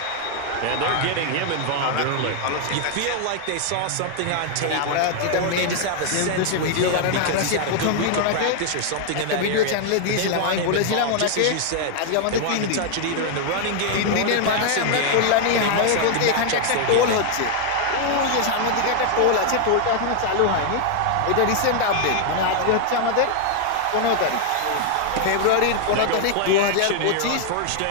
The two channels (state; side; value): different; both; correlation 0.00